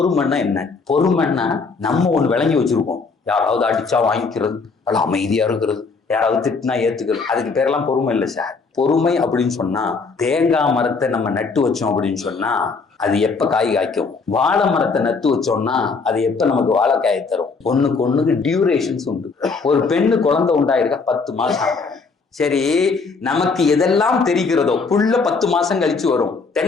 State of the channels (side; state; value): right; quieter; 4.6 dB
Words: என்ன? பொறுமைன்னா நம்ம ஒண்ணு விளங்கி வச்சிருக்கோம். யாராவது அடிச்சா வாங்கிக்கிறது, அல்ல அமைதியா இருக்கிறது, யாராவது திட்டினா ஏத்துக்கிறது, அதுக்கு பேரெல்லாம் பொறுமை இல்லை சார். பொறுமை அப்படின்னு சொன்னா தேங்காய் மரத்தை நம்ம நட்டு வச்சோம் அப்படின்னு சொன்னா அது எப்ப காய் காய்க்கும்? வாழை மரத்தை நட்டு வச்சோம்னா அது எப்ப நமக்கு வாழைக்காயை தரும்? ஒண்ணுக்கு டியூரேஷன்ஸ் உண்டு. ஒரு பெண்ணு குழந்தை உண்டாயிருக்கா 10 மாசம். சரி, நமக்கு எதெல்லாம் தெரிகிறதோ புல்ல 10 மாசம் கழிச்சு வரும்.